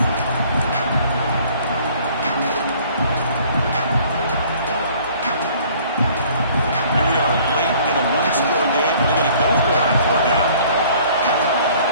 Here we are late in a one-score game. They're going to go for it on 4th down.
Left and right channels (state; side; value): inverted; both; correlation -0.55